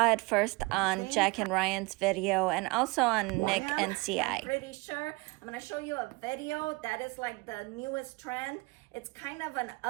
it first on Jack and Ryan's video and also on Nick and CI. I'm pretty sure. I'm going to show you a video that is like the newest trend. It's kind of an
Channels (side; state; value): left; quieter; 25.5 dB